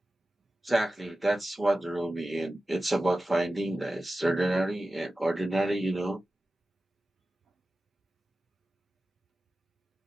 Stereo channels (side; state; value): both; normal; correlation 0.94